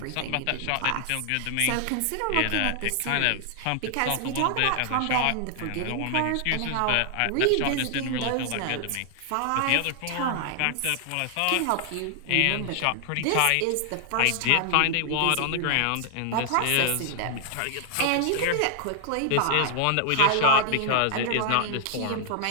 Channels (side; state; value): both; different; correlation 0.00